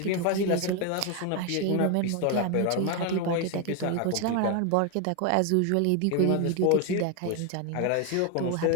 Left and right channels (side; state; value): both; different; correlation 0.01